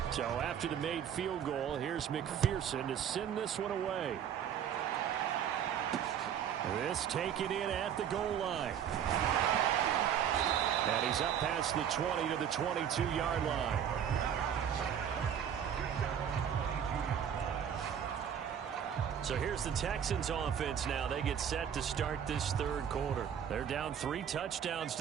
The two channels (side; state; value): left; quieter; 8.8 dB